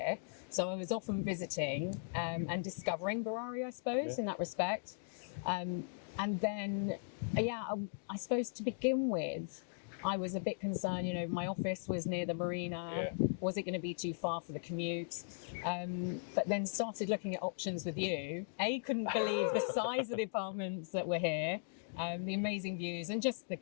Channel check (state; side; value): silent; right; digital silence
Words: So I was often visiting and discovering Barari, I suppose, in that respect. And then, I suppose to begin with, I was a bit concerned, my office was near the marina. Was it going to be too far for the commute? But then started looking at options with you. Couldn't believe the size of the apartments that were here, the amazing views and just the